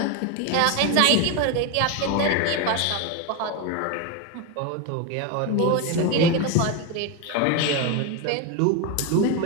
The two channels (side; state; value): both; different; correlation 0.02